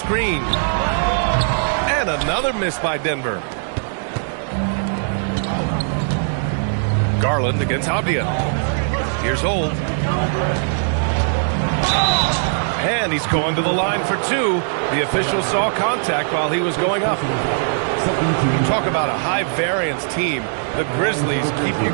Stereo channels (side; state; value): left; silent; digital silence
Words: And another miss by Denver. Garland against Avdia. Here's Holt. And he's going to the line for 2. The official saw contact while he was going up. You talk about a high-variance team. The Grizzlies keep you